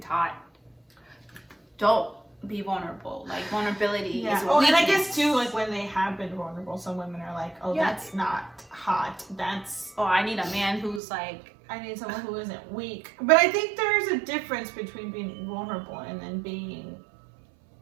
don't be vulnerable. Like vulnerability is a Oh, and I weakness. guess too, like when they have been vulnerable, some women are like, "Oh, Yeah. that's not hot. That's Oh, I need a man who's like, I need someone who isn't weak." But I think there's a difference between being vulnerable and then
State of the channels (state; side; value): drops out; left; at 11.0 s